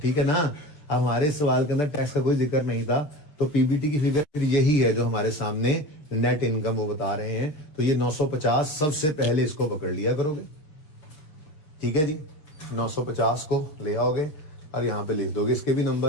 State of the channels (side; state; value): right; late; 6.7 ms